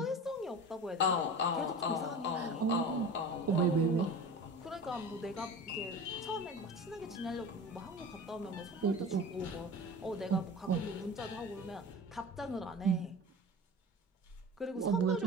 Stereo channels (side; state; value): both; normal; correlation 0.34